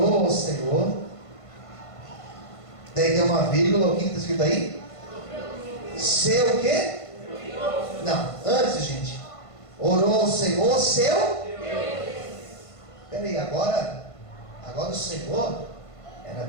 ao Senhor. Daí tem uma vírgula. O que está escrito aí? Seu o quê? Não, antes, gente. Orou ao Senhor, seu Deus. Peraí, agora o Senhor era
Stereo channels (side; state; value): right; late; 1.5 ms